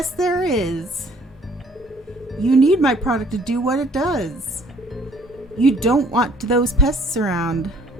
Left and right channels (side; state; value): both; normal; correlation 0.59